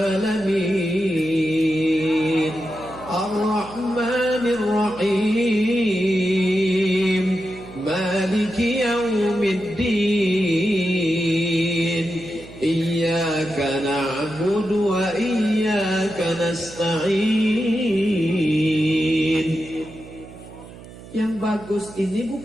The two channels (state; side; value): noise; right; hum, 17 dB below the sound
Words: Ar-Rahmanir Rahim. Maliki yaumiddin. Iyyaka na'budu wa iyyaka nasta'in. Yang bagus ini